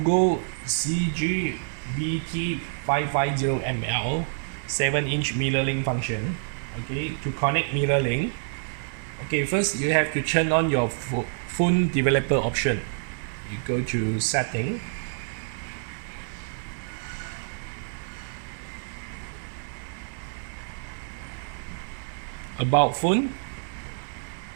CG-BT550ML 7-inch mirror link function. Okay, to connect mirror link, okay, first you have to turn on your phone developer option. You go to setting, about phone,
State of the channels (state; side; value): silent; left; digital silence